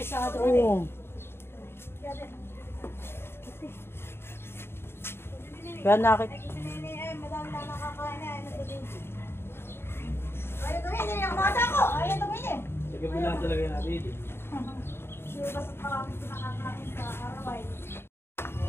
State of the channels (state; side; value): late; right; 0.11 ms